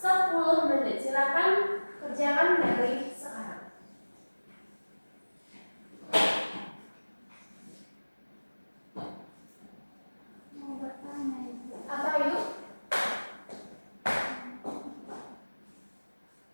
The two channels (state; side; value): inverted; both; correlation -1.00